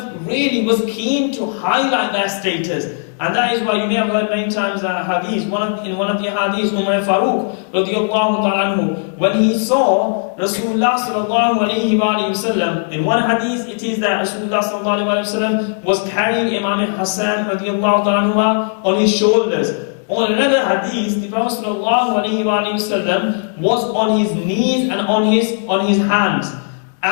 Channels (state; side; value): silent; right; 67 dB below the other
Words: really was keen to highlight their status. And that is why you may have heard many times hadith, in one of the hadiths, Umar Farooq radiallahu ta'ala anhu, when he saw Rasulullah sallallahu alayhi wa sallam, in one hadith it is that Rasulullah sallallahu alayhi wa sallam was carrying Imam Hassan radiallahu ta'ala anhu on his shoulders. On another hadith, the Prophet sallallahu alayhi wa sallam was on his knees and on his hands.